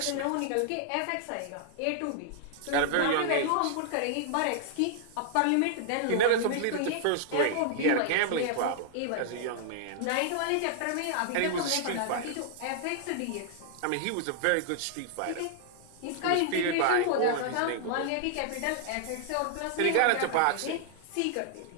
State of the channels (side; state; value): both; different; correlation -0.01